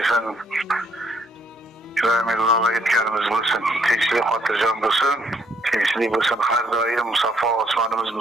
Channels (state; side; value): normal; both; correlation 0.69